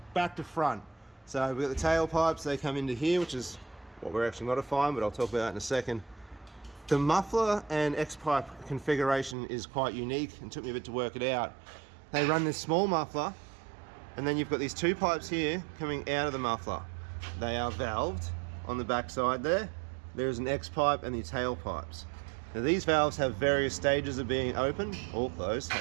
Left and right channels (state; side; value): drops out; left; at 9.3 s